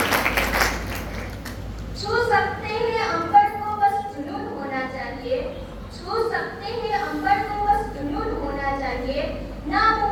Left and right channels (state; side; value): identical; both; correlation 1.00